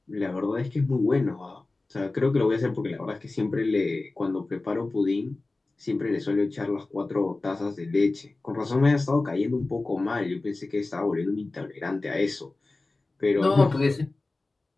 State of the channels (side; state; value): right; quieter; 3.3 dB